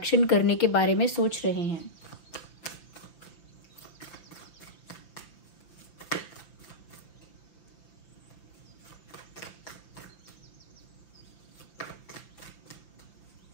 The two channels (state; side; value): late; right; 5.9 ms